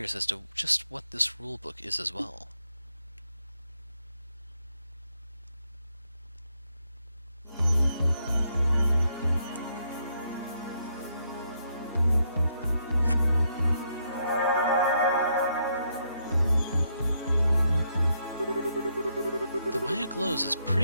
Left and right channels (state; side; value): inverted; both; correlation -0.76